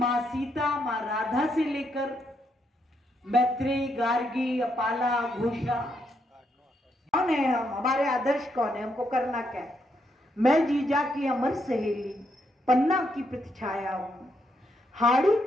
सीता, मां राधा से लेकर मैत्रेयी, गार्गी, अपाला, घोषा, कौन है हम, हमारे आदर्श कौन है, हमको करना क्या है। मैं जीजा की अमर सहेली, पन्ना की प्रतिछाया हूं, हाड़ी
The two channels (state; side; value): normal; both; correlation 0.78